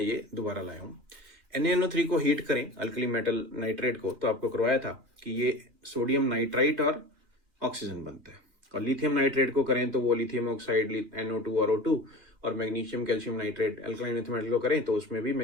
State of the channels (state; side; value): late; left; 2.4 ms